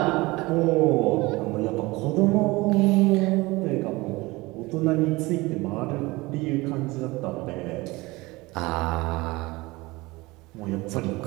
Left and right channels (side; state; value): left; quieter; 22.0 dB